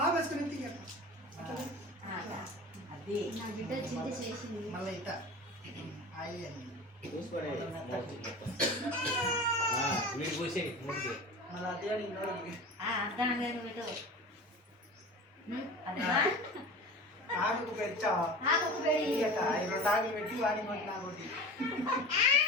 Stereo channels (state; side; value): normal; both; correlation 0.35